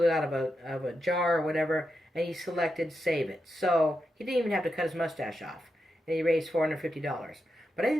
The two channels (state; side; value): normal; both; correlation 0.86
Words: it out of a jar or whatever, and he selected save it. So he didn't even have to cut his mustache off, and he raised $450. But I